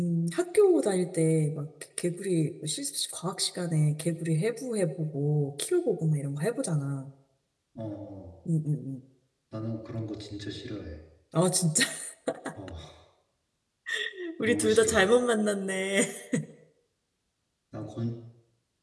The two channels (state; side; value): identical; both; correlation 1.00